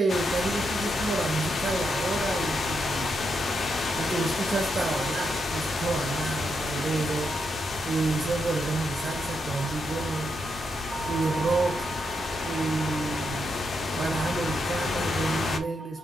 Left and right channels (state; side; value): normal; both; correlation 0.82